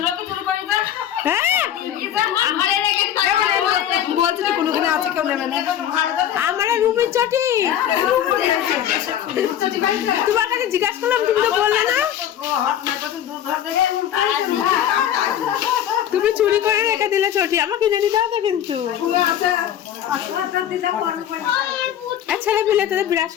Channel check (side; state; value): right; quieter; 10.6 dB